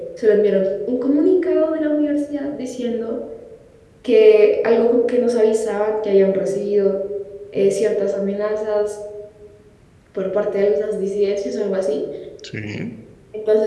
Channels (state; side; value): identical; both; correlation 1.00